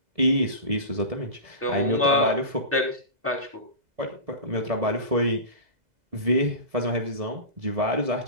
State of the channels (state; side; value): late; left; 2.0 ms